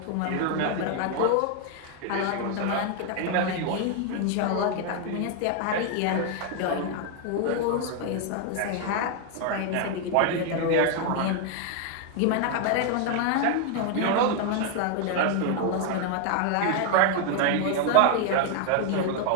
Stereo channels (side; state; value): both; different; correlation 0.00